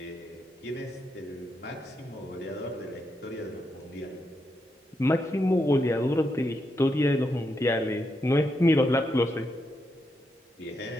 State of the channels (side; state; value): both; normal; correlation 0.82